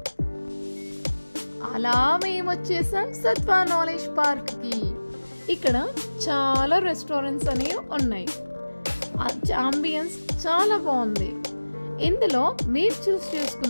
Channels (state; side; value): inverted; both; correlation -1.00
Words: అలా మేము వచ్చేసాం సత్వా నాలెడ్జ్ పార్క్కి. ఇక్కడ చాలా రెస్టారెంట్స్ అనేవి ఉన్నాయి. అంబియన్స్ చాలా బాగుంది. ఇందులో మీరు చూస్